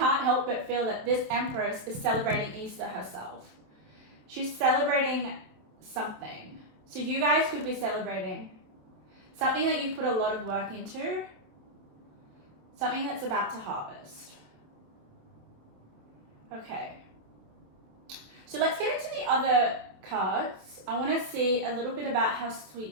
help but feel that this Empress is celebrating Easter herself. She's celebrating something. So you guys could be celebrating something that you put a lot of work into, something that's about to harvest. Okay. So let's get into the other cards. I want to see a little bit about how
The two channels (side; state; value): left; late; 27 ms